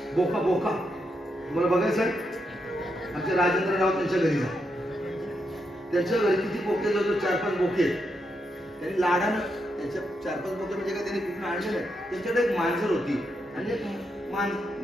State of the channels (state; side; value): normal; both; correlation 0.82